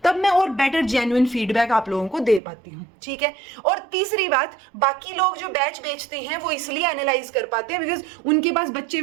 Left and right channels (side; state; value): left; drops out; at 2.4 s